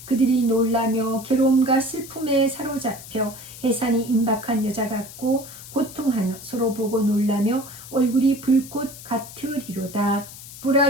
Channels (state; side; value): noise; left; hiss, 15 dB below the sound